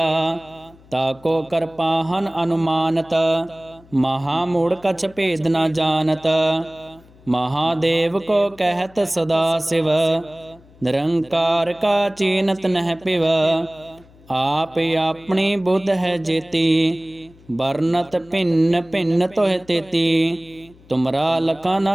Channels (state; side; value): noise; left; hum, 26 dB below the sound